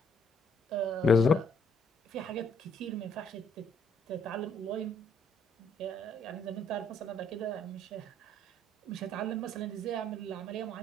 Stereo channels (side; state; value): both; normal; correlation 0.67